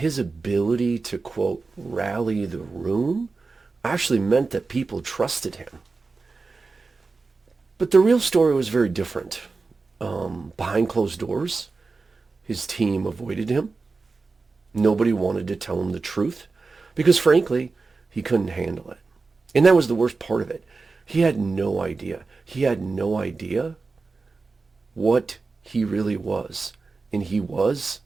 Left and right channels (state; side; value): quieter; left; 4.1 dB